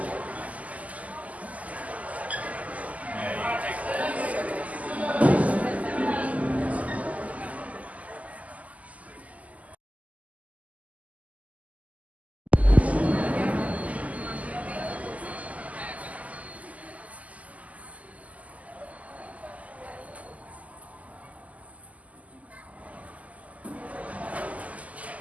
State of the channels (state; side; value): late; left; 0.073 ms